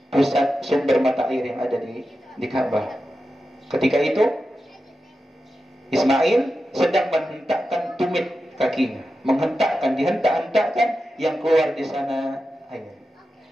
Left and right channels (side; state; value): both; normal; correlation 0.91